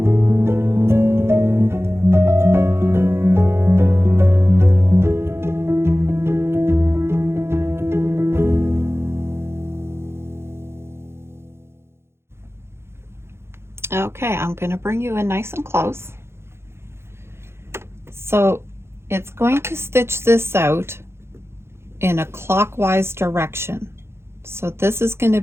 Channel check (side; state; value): left; late; 0.12 ms